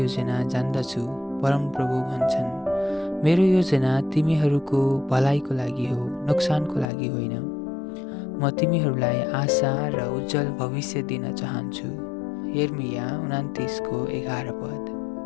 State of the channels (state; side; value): drops out; right; at 6.9 s